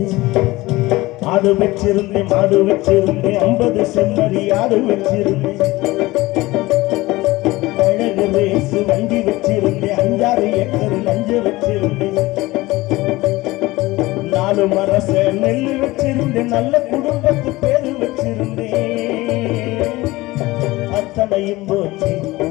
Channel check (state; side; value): quieter; right; 19.9 dB